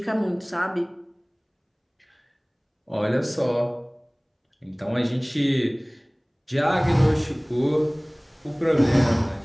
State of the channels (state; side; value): identical; both; correlation 1.00